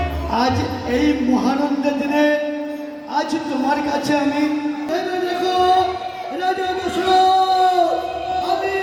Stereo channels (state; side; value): identical; both; correlation 1.00